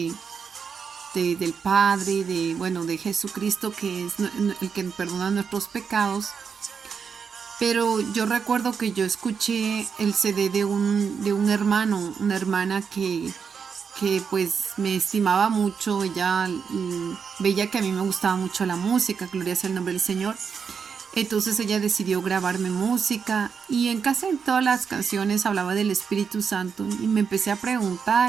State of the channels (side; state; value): left; quieter; 6.3 dB